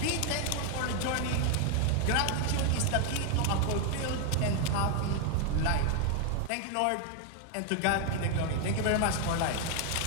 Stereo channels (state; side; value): different; both; correlation 0.01